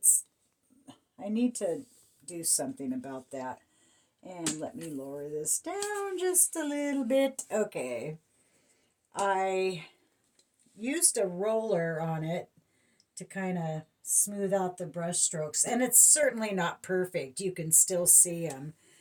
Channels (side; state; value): both; identical; correlation 1.00